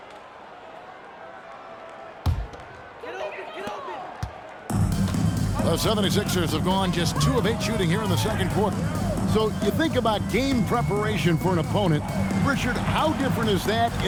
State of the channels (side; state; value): both; identical; correlation 1.00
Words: The 76ers have gone just 2 of 8 shooting here in the second quarter. So you think about game preparation for an opponent. Richard, how different is that